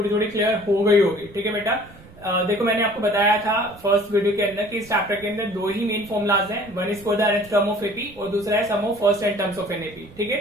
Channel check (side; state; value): right; noise; rumble, 22 dB below the sound